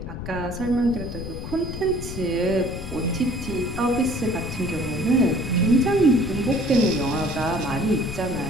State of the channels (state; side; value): noise; left; rumble, 8 dB below the sound